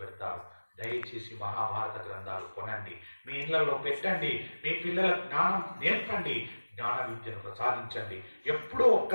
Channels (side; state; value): both; inverted; correlation -1.00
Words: దయచేసి మహాభారత గ్రంథాలు కొనండి, మీ ఇళ్లలో పెట్టండి, మీ పిల్లల జ్ఞానం నేర్పండి, జ్ఞాన విద్యను ప్రసాదించండి. ఎప్పుడో